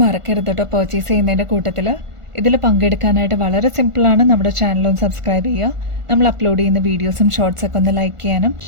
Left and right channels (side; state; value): left; late; 1.4 ms